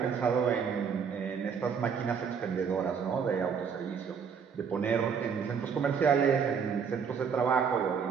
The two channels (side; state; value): left; quieter; 6.6 dB